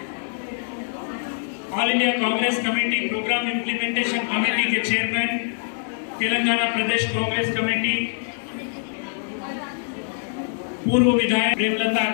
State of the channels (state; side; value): silent; right; 63 dB below the other